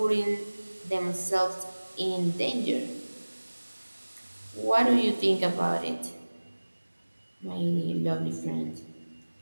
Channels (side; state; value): both; inverted; correlation -1.00